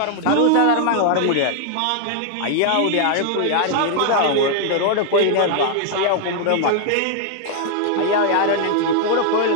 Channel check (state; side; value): different; both; correlation 0.00